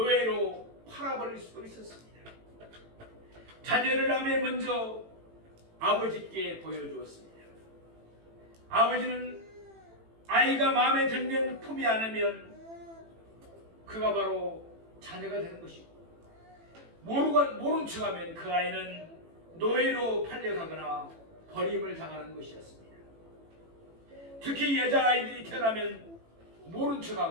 팔아버릴 수도 있었습니다. 자녀를 낳으면 먼저 아버지께 보여주었습니다. 아버지는 아이가 마음에 들면 품이 안으면 그가 바로 자녀가 되는 것이고, 모른 척하면 그 아이는 노예로 팔려가거나 버림을 당하는 것이었습니다. 특히 여자아이들이 태어나면 모른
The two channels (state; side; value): late; left; 18 ms